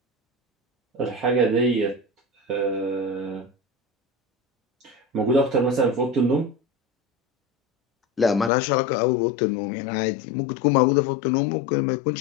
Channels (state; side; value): drops out; right; at 8.5 s